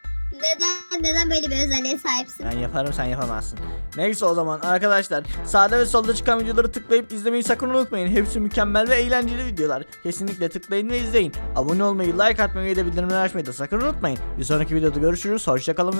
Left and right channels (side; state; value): both; inverted; correlation -1.00